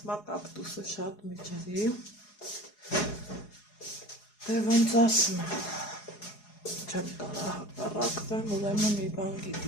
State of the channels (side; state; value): right; late; 4.8 ms